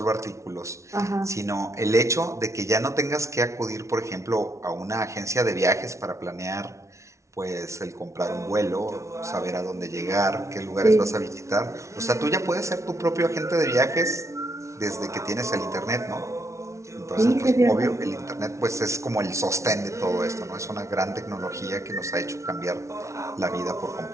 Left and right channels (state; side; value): late; left; 0.14 ms